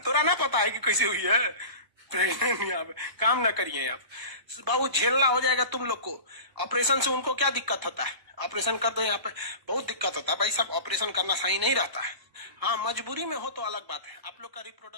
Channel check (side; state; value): left; late; 1.0 ms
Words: तोरा ना पता है कि कैसे हुई है प्रेग्नेंट? यहाँ पे काम ना करिए आप बाबू, झेलना हो जाएगा तुम लोग को। ऑपरेशन से उनको क्या दिक्कत होता है, ऑपरेशन कर दो, यहाँ पे बहुत दिक्कत होता है भाई साहब, ऑपरेशन करना सही नहीं रहता है। हाँ मजबूरी में हो तो अलग बात है। आप लोग का